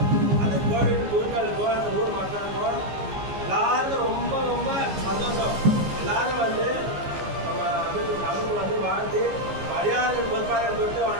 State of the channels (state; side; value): late; left; 15 ms